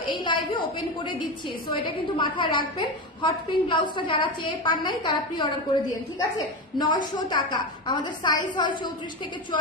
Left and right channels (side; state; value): both; normal; correlation 0.18